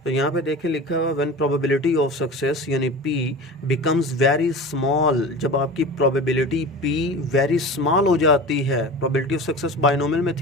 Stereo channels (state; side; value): normal; both; correlation 0.33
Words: तो यहाँ पे देखें लिखा हुआ व्हेन प्रोबेबिलिटी ऑफ सक्सेस यानी P बिकम्स वेरी स्मॉल, जब आपकी प्रोबेबिलिटी P वेरी स्मॉल हो जाती है। प्रोबेबिलिटी ऑफ सक्सेस बाइनोमियल में